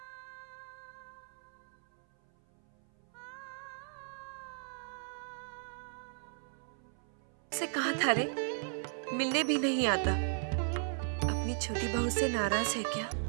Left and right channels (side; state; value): left; silent; 54 dB below the other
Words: कहीं भूतनाथ ने कल जब मेरा गाना से कहा था रे, मिलने भी नहीं आता। अपनी छोटी बहू से नाराज है क्या?